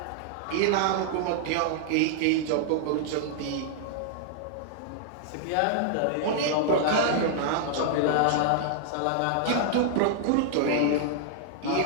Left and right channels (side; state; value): both; different; correlation -0.01